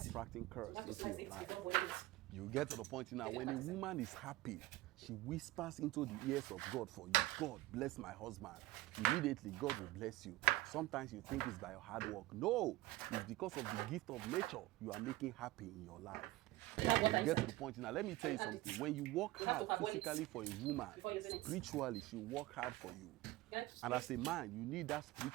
attracting So curse we have to into slice your it life. before boiling it. You get to the point now, when a woman is happy, she whispers into the ears of God for you. God, bless my husband. Immediately, God will bless you. Sometimes you think it's by your hard work. No, it's because of the gift of nature you are making happy in your life. You get to the point now. Let me tell you something. When you work hard physically for a woman, spiritually, she work hard for you. And as a man, you need that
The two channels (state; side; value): quieter; left; 18.1 dB